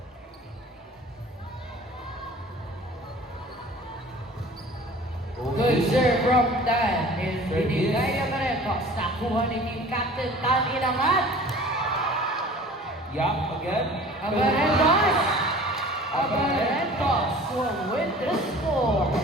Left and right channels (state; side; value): normal; both; correlation 0.45